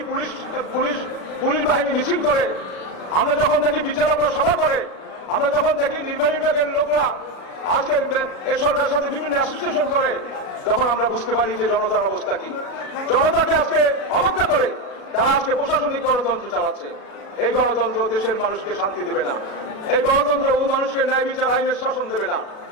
পুলিশ বাহিনী মিছিল করে, আমরা যখন দেখি বিচারকরা সভা করে, আমরা যখন দেখি নির্বাহী বিভাগের লোকরা আজকে এই সরকারের সাথে বিভিন্ন অ্যাসোসিয়েশন করে, তখন আমরা বুঝতে পারি যে জনতার অবস্থা কি। জনতাকে আজকে অবজ্ঞা করে তারা আজকে প্রশাসনিক গণতন্ত্র চালাচ্ছে। এই গণতন্ত্র দেশের মানুষকে শান্তি দেবে না, এই গণতন্ত্র ও মানুষকে ন্যায় বিচার আইনের শাসন দেবে না,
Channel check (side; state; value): right; late; 37 ms